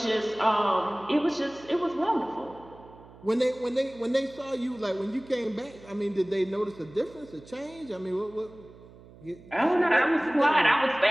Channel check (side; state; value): right; noise; hum, 21 dB below the sound